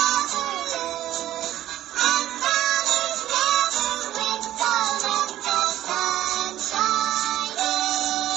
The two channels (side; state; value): left; quieter; 13.3 dB